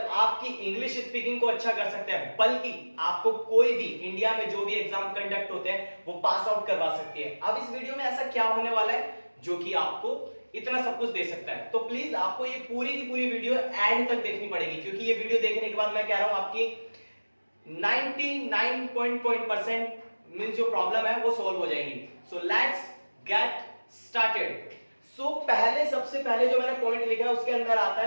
आपकी इंग्लिश स्पीकिंग को अच्छा कर सकते हैं बल्कि आपको कोई भी इंडिया में जो भी एग्जाम कंडक्ट होते हैं वो पास आउट करवा सकती है। अब इस वीडियो में ऐसा क्या होने वाला है जो कि आपको इतना सब कुछ दे सकता है, तो प्लीज आपको ये पूरी की पूरी वीडियो एंड तक देखनी पड़ेगी क्योंकि ये वीडियो देखने के बाद मैं कह रहा हूं आपकी 99% मींस जो प्रॉब्लम है वो सॉल्व हो जाएगी। So let's get started. So सबसे पहले जो मैंने पॉइंट लिखा है उसके अंदर आता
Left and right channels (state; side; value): inverted; both; correlation -1.00